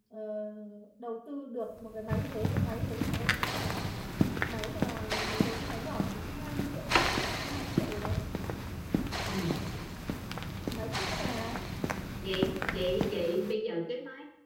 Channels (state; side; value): identical; both; correlation 1.00